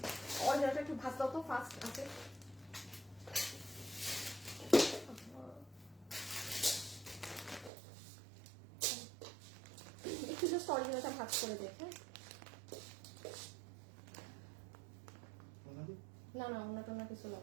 অরিজিনালটা একটু ভাজ দাও তো, ফাস্ট আছে। একটু জাস্ট অরিজিনালটা ভাজ করে দেখে। না না, অন্য কিছু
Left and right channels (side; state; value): left; drops out; at 7.7 s